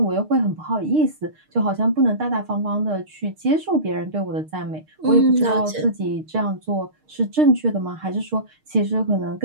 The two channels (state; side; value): late; left; 6.5 ms